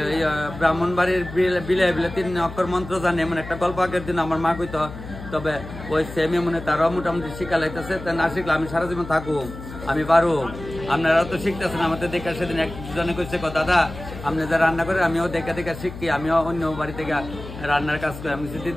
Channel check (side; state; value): left; noise; hum, 12 dB below the sound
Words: ব্রাহ্মণ বাড়ির বিলে বিলে 3 অক্ষর মন্ত্র জানে, এমন একটা গল্প আগের দিন আমার মা কইতো। তবে ওই সেমে মনে তারাও মোটামুটি শিক্ষা লাইতেছে। তা না শিখলে আমি সারা জীবন থাকুক, আমি পারো। আপনারা তো শিখতেছেন আমাদের দেখে। সেদিন একজনে কইছে দাদা আপনি যা রান্না করে আমিও দেখে দেখে শিখি, আমিও অন্য বাড়ি থেকে রান্নার কাজ করি। আমি